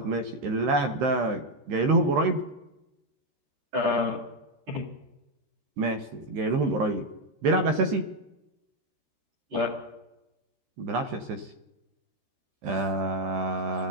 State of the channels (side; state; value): left; late; 13 ms